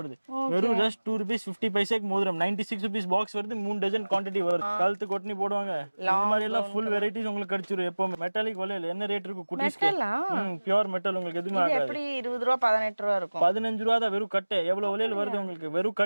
வெறும் ஜஸ்ட் 2 rupees 50 பைசாக்கு மோதிரம். 96 rupees பாக்ஸ் வருது, 3 டஜன் குவாண்டிட்டி வருது. கழுத்து கொட்டனி போடுவாங்க. இந்த மாதிரி எல்லாம் ஃபுல் வெரைட்டிஸ் உங்களுக்கு கிடைச்சிரும். எப்பவுமே மெட்டாலிக் வளையல் என்ன ரேட் இருக்கும் குட்டீஸ்க்கு? பியூர் மெட்டல், உங்களுக்கு எதுவுமே ஆகாது. எப்படி 20 ரூபா 18 ரூபா இருக்கும்? 15 ரூபா தான் வெறும் கட்டு. எவ்வளவு வளையல் வருது உங்களுக்கு? வெறும்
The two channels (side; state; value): both; inverted; correlation -1.00